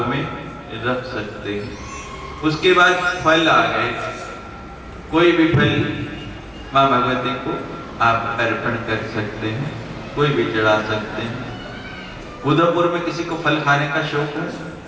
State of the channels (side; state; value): both; identical; correlation 1.00